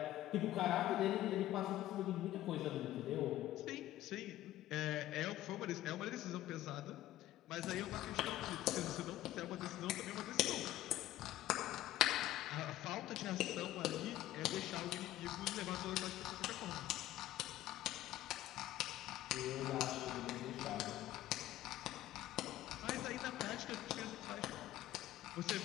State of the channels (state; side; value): quieter; right; 14.5 dB